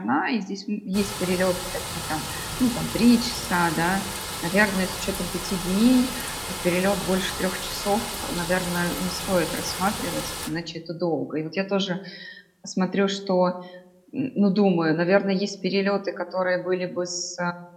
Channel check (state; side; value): identical; both; correlation 1.00